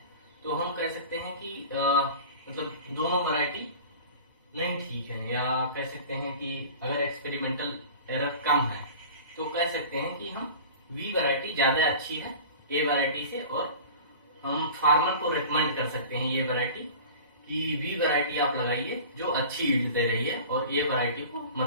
तो हम कह सकते हैं कि मतलब दोनों वैरायटी नहीं ठीक है, या कह सकते हैं कि अगर एक्सपेरिमेंटल एरर कम है तो कह सकते हैं कि हम वी वैरायटी ज्यादा अच्छी है ए वैरायटी से, और हम फार्मर को रिकमेंड कर सकते हैं ये वैरायटी कि बी वैरायटी आप लगाइए जो अच्छी यील्ड दे रही है और ये वैरायटी को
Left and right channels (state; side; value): inverted; both; correlation -0.39